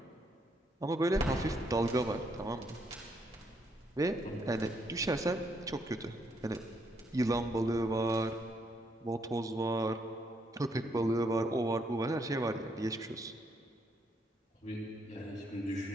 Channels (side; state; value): both; normal; correlation 0.73